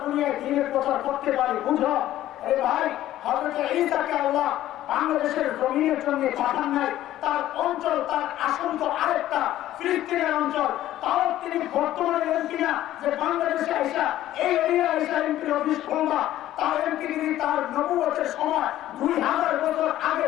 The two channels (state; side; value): quieter; right; 13.6 dB